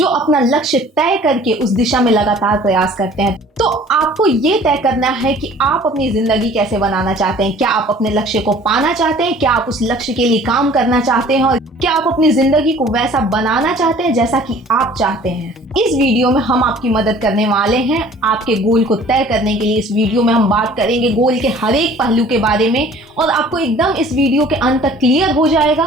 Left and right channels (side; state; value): both; normal; correlation 0.50